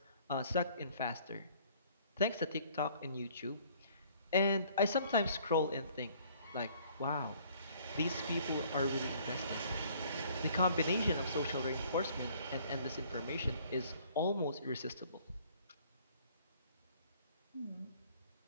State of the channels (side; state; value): both; inverted; correlation -0.58